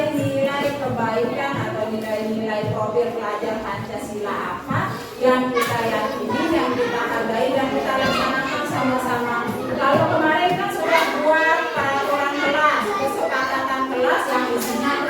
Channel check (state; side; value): identical; both; correlation 1.00